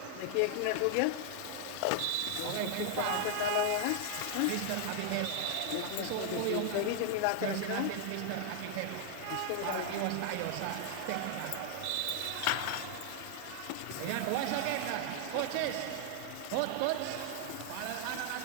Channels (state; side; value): different; both; correlation 0.00